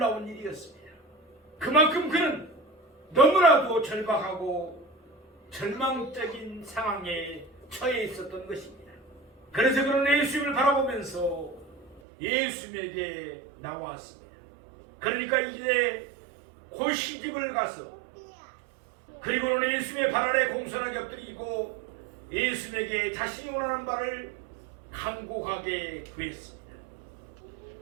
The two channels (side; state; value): left; drops out; at 12.0 s